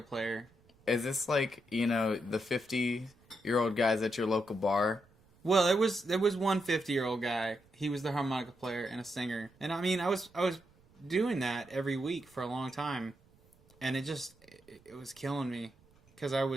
Is this like, the 50-year-old guys at your local bar? Well, there was one 50-year-old guy. He was the harmonica player and a singer. And I mean, I was doing that every week for a long time. And it was killing me. Because I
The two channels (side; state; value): right; noise; rumble, 30 dB below the sound